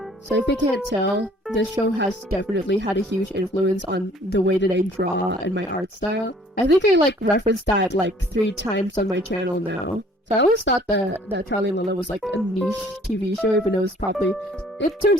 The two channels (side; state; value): both; normal; correlation 0.56